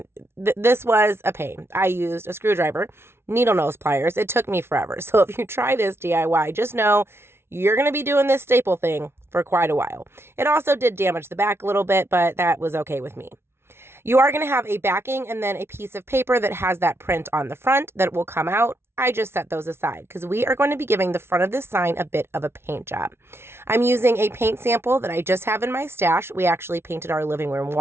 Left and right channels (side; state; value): left; late; 0.12 ms